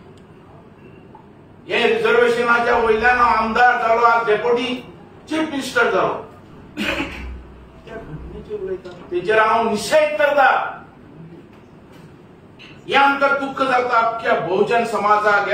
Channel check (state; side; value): identical; both; correlation 1.00